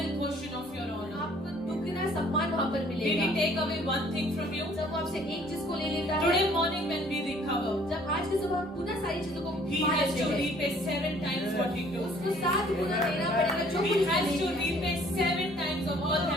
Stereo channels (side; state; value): both; normal; correlation 0.57